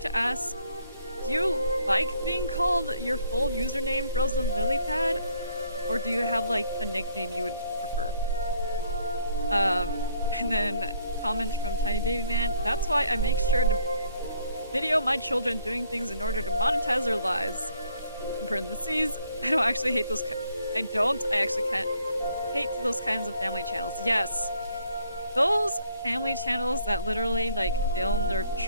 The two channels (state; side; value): inverted; both; correlation -0.66